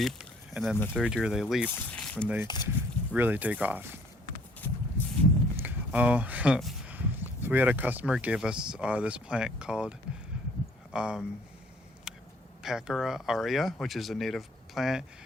And then the third year, they leap when they really take off. So we had a customer gave us this plant called Pachyra aurea, which is a native plant.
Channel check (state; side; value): normal; both; correlation 0.59